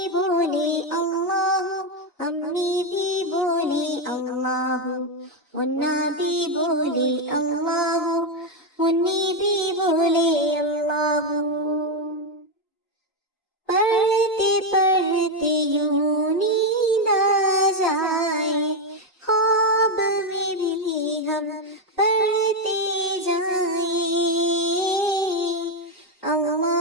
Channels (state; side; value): normal; both; correlation 0.05